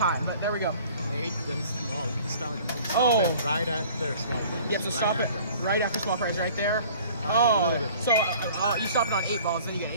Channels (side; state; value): both; inverted; correlation -0.50